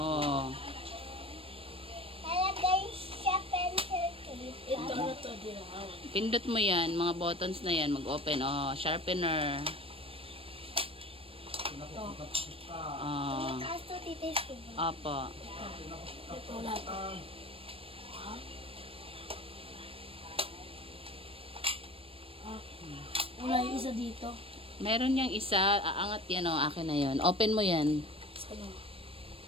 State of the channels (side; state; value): left; late; 0.27 ms